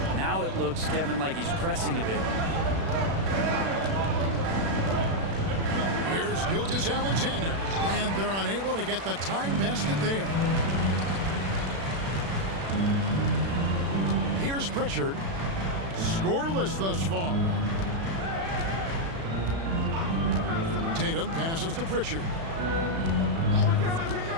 now it looks, Kevin, like he's pressing a bit. Here's Gilgeous-Alexander, and they're unable to get the tying basket there. Here's Pritchard, scoreless thus far. Tatum passes to Pritchard.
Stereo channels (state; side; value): late; left; 36 ms